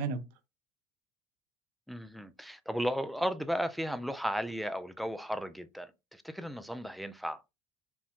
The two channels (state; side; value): normal; both; correlation 0.87